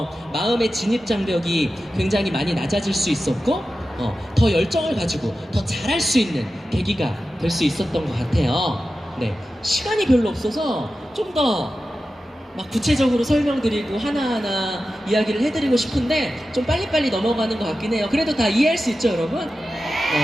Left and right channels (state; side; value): normal; both; correlation 0.93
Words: 마음의 진입 장벽이 굉장히 많이 낮아질 수 있었고, 더 열정을 가지고 더 잘할 수 있는 계기가 될 수 있었던 것 같아요. 네, 시간이 별로 없어서 좀 더 막 구체적으로 설명드리고 하나하나 이야기를 해드리고 싶은데 좀 빨리빨리 넘어가는 것 같긴 해요. 그래도 다 이해할 수 있죠, 여러분?